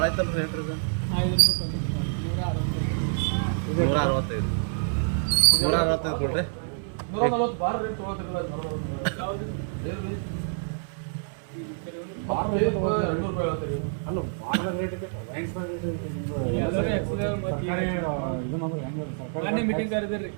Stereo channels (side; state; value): left; silent; 60 dB below the other